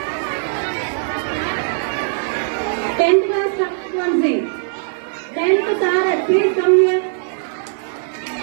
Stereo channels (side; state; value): left; silent; digital silence